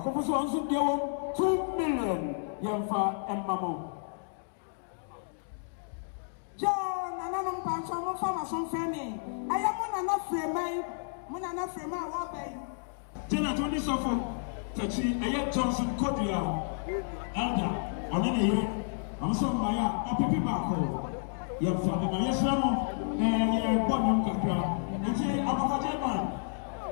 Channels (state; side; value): silent; right; digital silence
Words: also deal 2 million. Yamfa and Mamo. John, another patch of farmers on Fanny. I am not free man. When I'm not free man all day. Jenna Tony Sofo Tachi. I have Johnson Kodia. Elder. On any year. I'm so Maya. Or Pipi Bako. Yamfa. And yes, Ramo. Bottom Capra. They say, I'm a German.